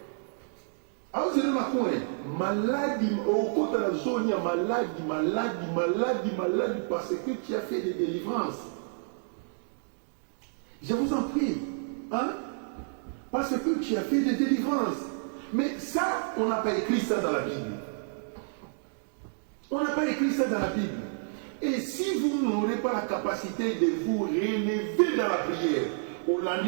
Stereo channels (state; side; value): silent; left; digital silence